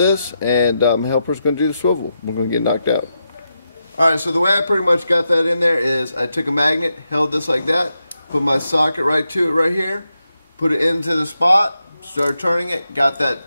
and helper's going to do the swivel. We're going to get knocked out. Alright, so the way I pretty much got that in there is I took a magnet, held this like that, put my socket right to it right here, put it into the spot, started turning it, got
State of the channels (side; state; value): both; inverted; correlation -0.86